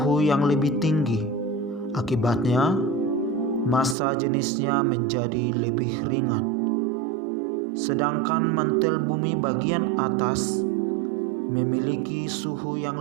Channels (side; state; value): left; drops out; at 4.0 s